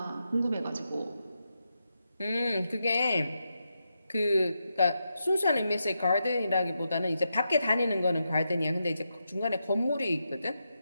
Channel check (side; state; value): both; inverted; correlation -0.86